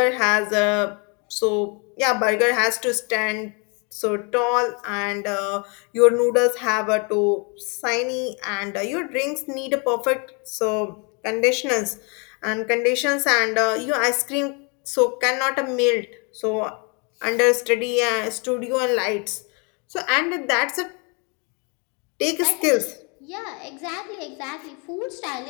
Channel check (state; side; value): quieter; right; 33.8 dB